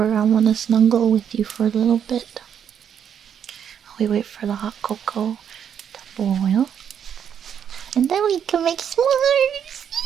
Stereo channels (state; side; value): quieter; left; 8.5 dB